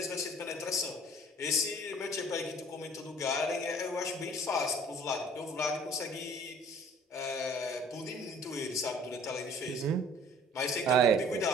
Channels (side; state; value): both; normal; correlation 0.51